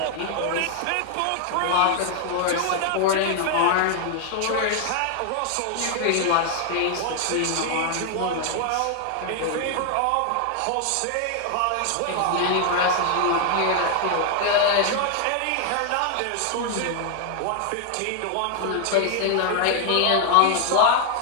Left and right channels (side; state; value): both; different; correlation 0.00